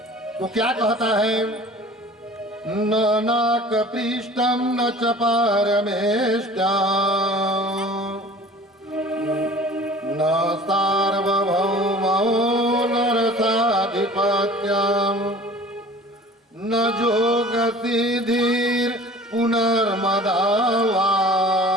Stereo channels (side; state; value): both; normal; correlation 0.45